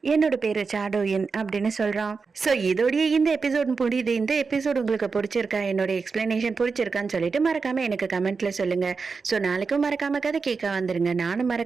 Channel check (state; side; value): quieter; left; 4.8 dB